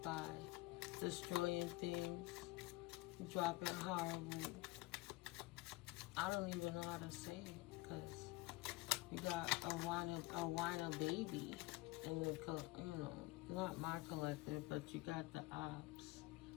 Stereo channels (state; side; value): quieter; right; 21.2 dB